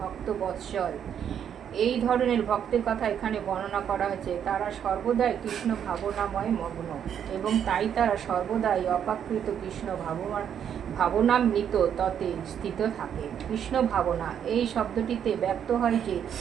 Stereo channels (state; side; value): quieter; left; 8.8 dB